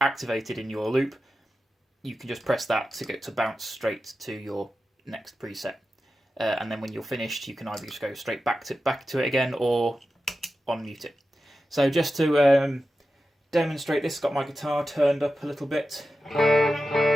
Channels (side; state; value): both; normal; correlation 0.92